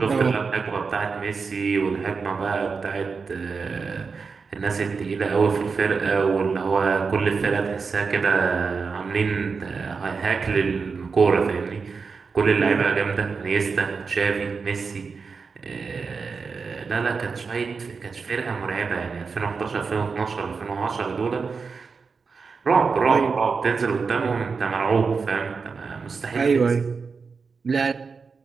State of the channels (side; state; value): left; quieter; 5.0 dB